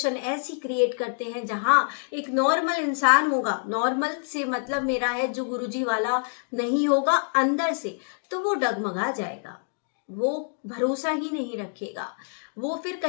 ऐसी क्रिएट करते हैं जहां एक नॉर्मल इंसान होगा, नॉर्मल से मतलब मेरा है जो गुरुजी वाला नहीं होगा अंदर से, तो वो डगमगा जाएगा, वो भरोसा ही नहीं रखेगा, वो फिर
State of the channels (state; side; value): silent; right; digital silence